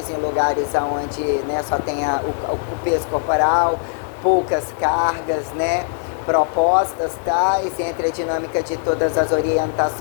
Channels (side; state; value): right; silent; digital silence